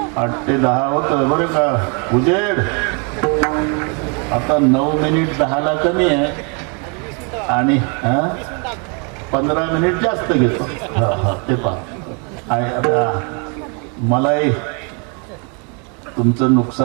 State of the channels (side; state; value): left; quieter; 35.5 dB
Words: 8 ते 10 होत बरं का उजेड. आता 9 मिनिट 10ला कमी आहे आणि 15 मिनिट जास्त घेतो. ते पहा, मलाही तुमचं